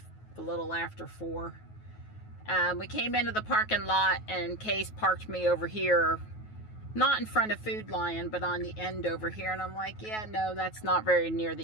a little after 4. We came into the parking lot and Case parked me over here, not in front of Food Lion, but on the end over here. And I'm like, yeah, no, that's not very near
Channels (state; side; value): late; right; 9.3 ms